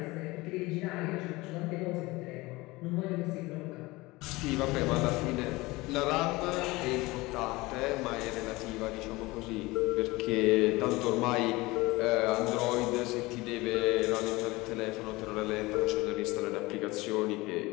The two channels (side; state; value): right; quieter; 21.5 dB